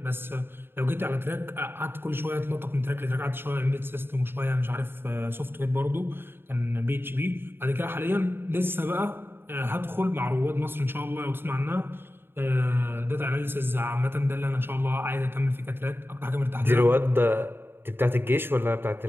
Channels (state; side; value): late; left; 0.11 ms